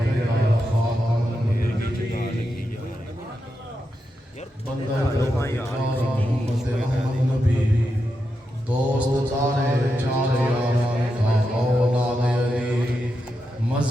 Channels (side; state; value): both; normal; correlation 0.87